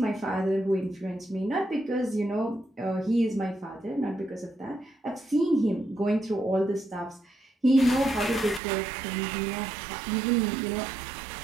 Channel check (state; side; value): drops out; left; at 8.6 s